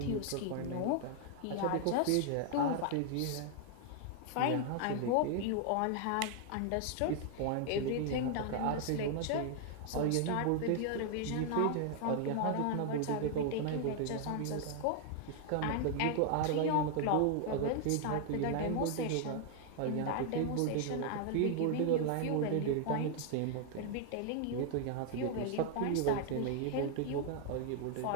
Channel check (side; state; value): both; different; correlation 0.00